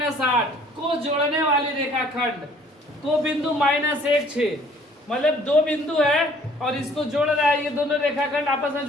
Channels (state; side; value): normal; both; correlation 0.57